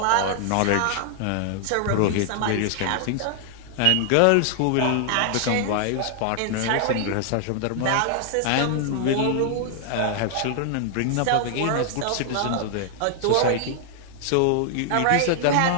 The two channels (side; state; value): both; different; correlation 0.00